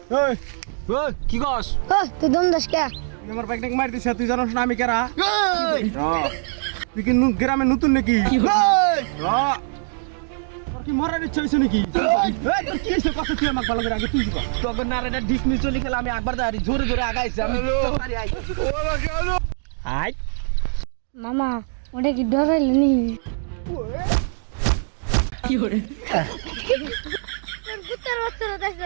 এই ওই কি কস? ও তুই দম দাস কে? তুই আমার বাইক মার দিছে, তুই জানোস না আমি কেরা? তুই কি গ্রামে নতুন নাকি? তোর কি মরার ইচ্ছা হয়েছে নাকি? এই, তোর কি হয়েছে? কথা তুই আমাকে ভালো করে আগে তুই কর। তখন না রে ডিসমিস চলি খেলা আমি একবার দাঁড়ি জোরে জোরে আগাইছি আমি তাড়াতাড়ি আই আই মামা ওটা কি ডরাইল নি? কি করে তোর কুত্তার বাচ্চারা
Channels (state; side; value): silent; left; digital silence